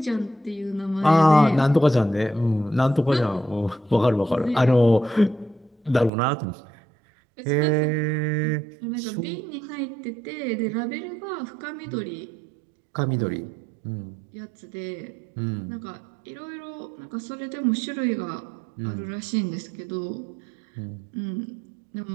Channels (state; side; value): drops out; left; at 6.1 s